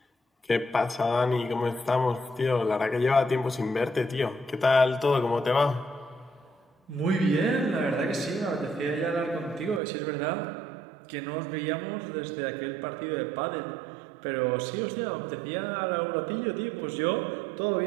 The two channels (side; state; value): left; drops out; at 9.8 s